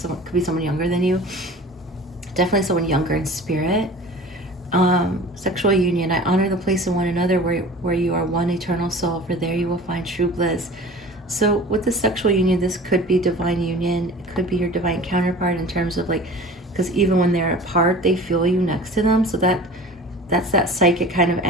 could be someone younger than you. Definitely someone younger in spirit. Sexual union. I honor the place in one another where you are one eternal soul, for there you will find true bliss. So with the sexual union, this could be divine union. It could be your divine counterpart in terms of like, because even when they're apart, they feel you next to them. So that's that psychic kind of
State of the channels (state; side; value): normal; both; correlation 0.41